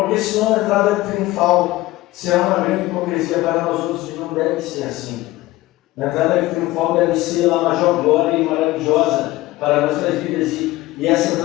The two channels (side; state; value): right; quieter; 18.1 dB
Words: senão a entrada triunfal será uma grande hipocrisia para nós outros, e não deve ser assim. A entrada triunfal deve ser a maior glória e maravilhosa para nossas vidas, e essa